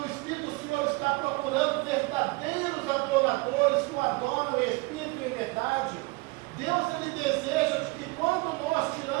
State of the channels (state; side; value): quieter; left; 25.7 dB